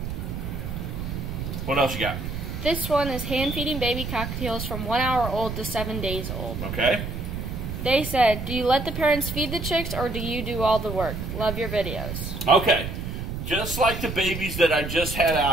What else you got? This one is hand-feeding baby cockatiels from 1 hour old to 7 days old. Okay. They said, do you let the parents feed the chicks or do you do all the work? Love your videos. Okay. Just like the babies that I just had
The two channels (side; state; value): right; noise; rumble, 5 dB below the sound